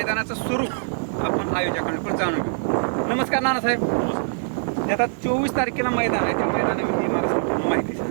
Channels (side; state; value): left; silent; digital silence